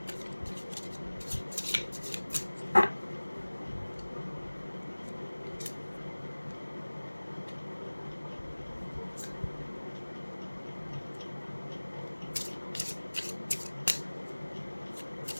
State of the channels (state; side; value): inverted; both; correlation -1.00